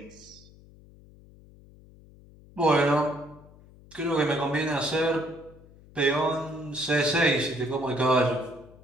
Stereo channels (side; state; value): left; noise; hum, 23 dB below the sound